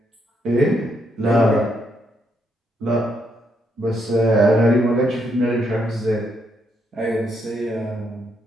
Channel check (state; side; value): normal; both; correlation 0.76